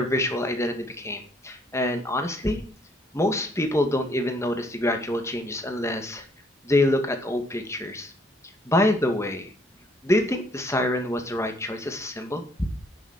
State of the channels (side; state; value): both; normal; correlation 0.65